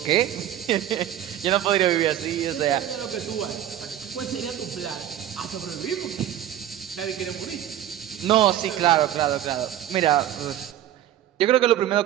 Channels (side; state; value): left; quieter; 11.8 dB